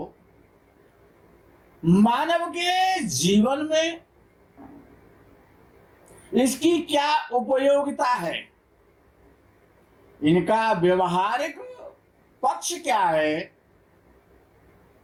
मानव के जीवन में इसकी क्या उपयोगिता है, इनका व्यवहारिक पक्ष क्या है,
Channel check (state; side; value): identical; both; correlation 1.00